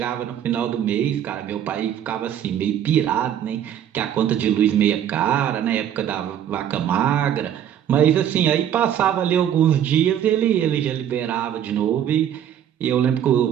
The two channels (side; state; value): left; quieter; 10.0 dB